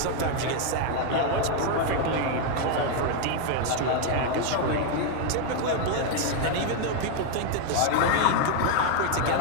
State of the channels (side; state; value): both; different; correlation 0.01